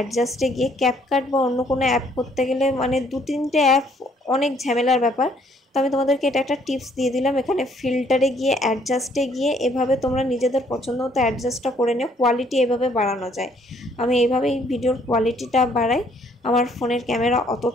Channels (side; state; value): both; normal; correlation 0.64